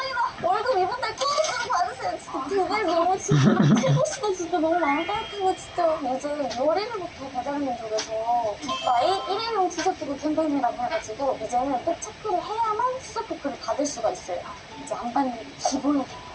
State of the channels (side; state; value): both; identical; correlation 1.00